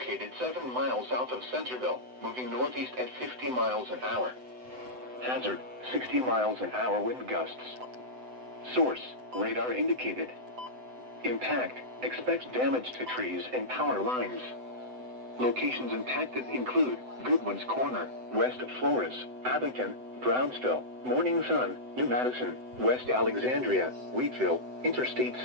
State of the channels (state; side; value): late; left; 7.9 ms